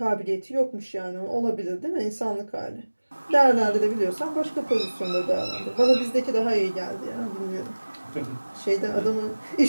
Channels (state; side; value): inverted; both; correlation -1.00